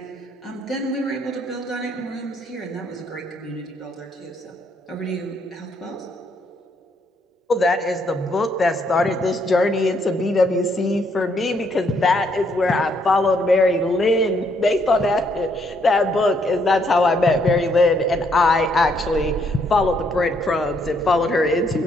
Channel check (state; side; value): normal; both; correlation 0.71